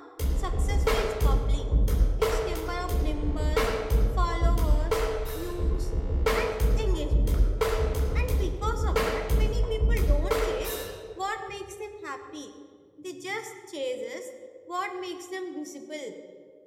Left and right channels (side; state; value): both; identical; correlation 1.00